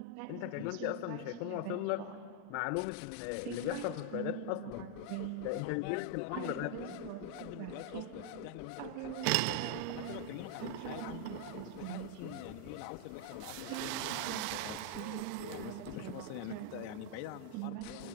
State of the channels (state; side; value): different; both; correlation 0.00